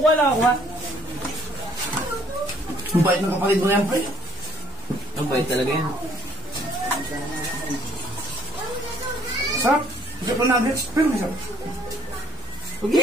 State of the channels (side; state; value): both; normal; correlation 0.60